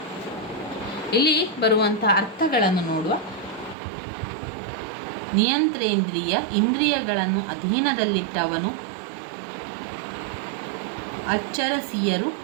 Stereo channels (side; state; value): left; drops out; at 3.8 s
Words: ಇಲ್ಲಿ ಬರುವಂಥ ಅರ್ಥಗಳನ್ನು ನೋಡುವ. ನಿಯಂತ್ರೇಂದ್ರಿಯ, ಇಂದ್ರಿಯಗಳನ್ನು ಅಧೀನದಲ್ಲಿಟ್ಟವನು. ಅಚ್ಚರಸಿಯರು,